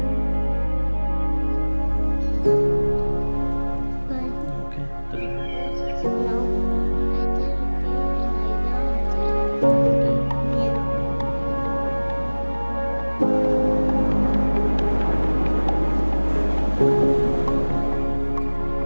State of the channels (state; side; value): inverted; both; correlation -1.00